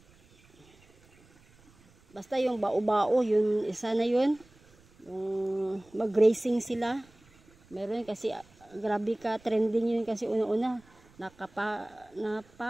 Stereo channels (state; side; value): noise; right; rumble, 29 dB below the sound